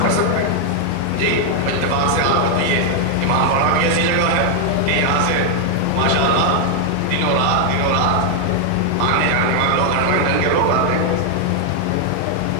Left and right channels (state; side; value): different; both; correlation 0.00